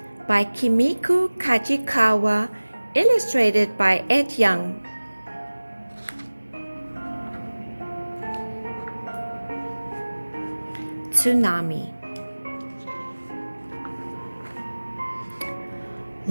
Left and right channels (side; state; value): both; inverted; correlation -1.00